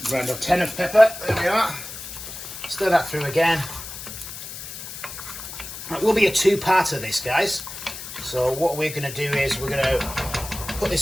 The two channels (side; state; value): left; noise; hiss, 10 dB below the sound